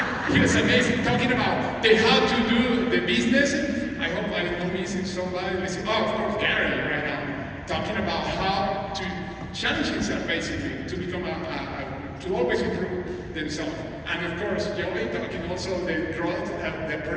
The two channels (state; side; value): identical; both; correlation 1.00